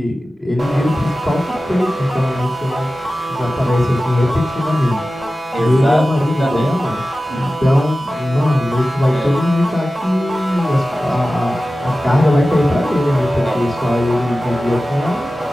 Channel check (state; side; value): normal; both; correlation 0.95